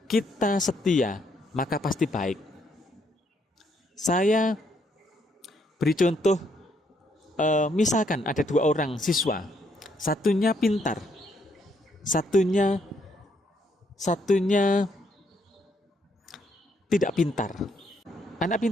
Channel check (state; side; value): normal; both; correlation 0.72